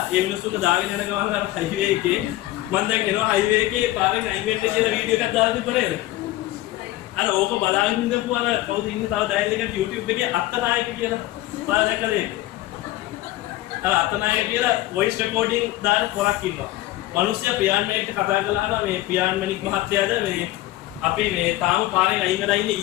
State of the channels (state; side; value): quieter; right; 16.5 dB